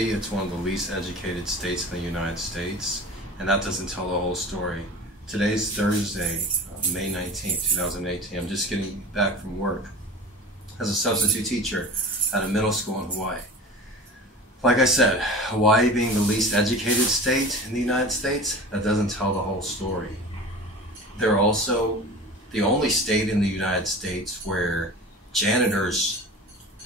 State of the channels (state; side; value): normal; both; correlation 0.36